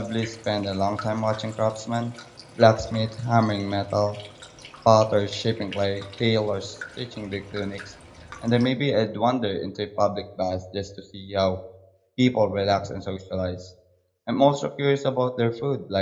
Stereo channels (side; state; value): both; identical; correlation 1.00